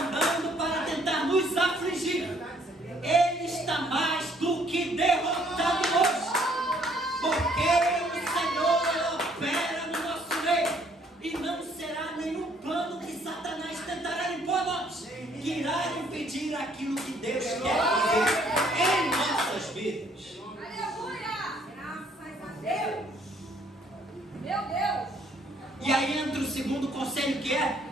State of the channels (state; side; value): normal; both; correlation 0.64